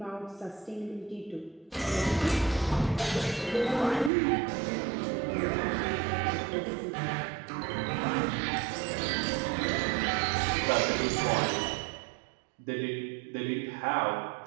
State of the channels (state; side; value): drops out; left; at 4.1 s